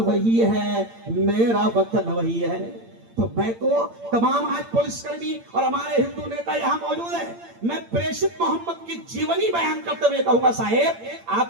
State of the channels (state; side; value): late; left; 8.8 ms